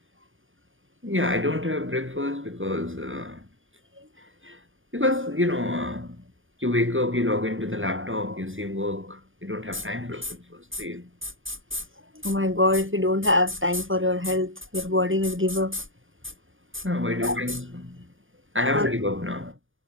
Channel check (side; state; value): left; late; 0.58 ms